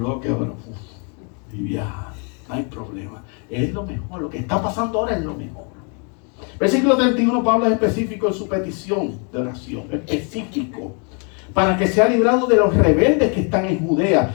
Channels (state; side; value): quieter; right; 37.4 dB